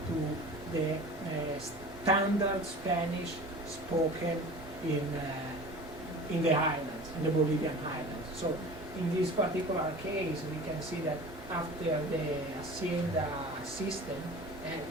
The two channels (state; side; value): normal; both; correlation 0.39